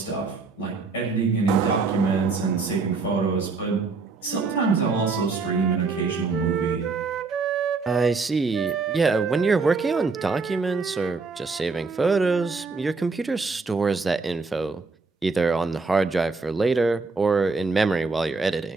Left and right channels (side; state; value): left; quieter; 4.3 dB